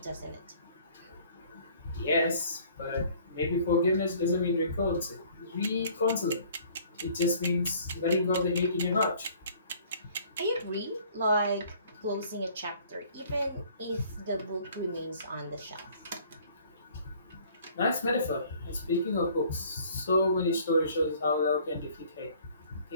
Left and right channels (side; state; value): both; inverted; correlation -0.55